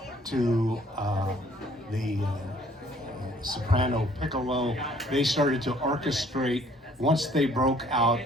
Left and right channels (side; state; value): both; normal; correlation 0.60